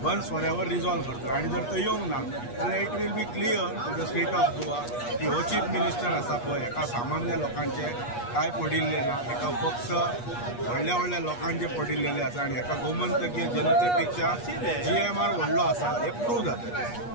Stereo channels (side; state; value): right; late; 8.4 ms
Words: once for ever resolve करतलो आनी जर तो येवंक ना जाल्यार it will be clear to the state of Goa की हो चीफ मिनिस्टर आसा पळय हेका सामान्य लोकांचे काय पडिल्ले ना हेका फक्त व्हडल्या लोकांचे पडिल्लेले आसा आनी हेका गोमंतकीय जनते पेक्षा GMR व्हडलो आसा हे प्रूव जाता